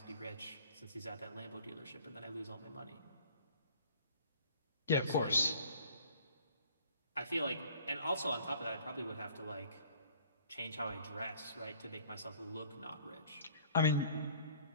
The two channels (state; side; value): inverted; both; correlation -0.54